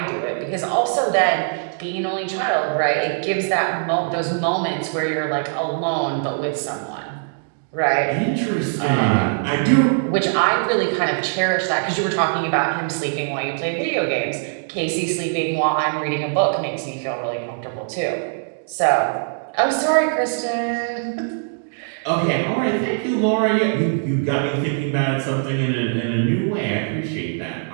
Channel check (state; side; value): silent; left; digital silence